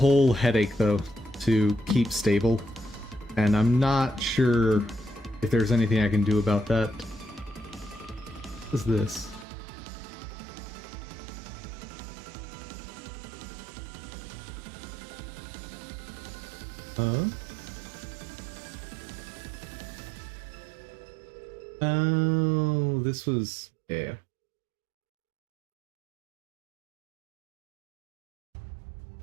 headache, though, to keep stable. And I'm not sure if there's anything I can do about that. What is this? Huh? Oh, this was... yeah.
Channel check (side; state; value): left; drops out; at 9.5 s